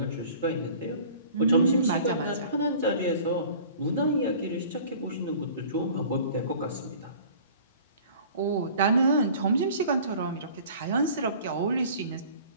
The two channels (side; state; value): both; inverted; correlation -0.46